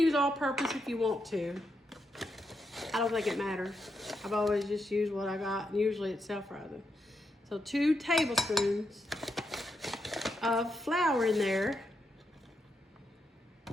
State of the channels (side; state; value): both; normal; correlation 0.82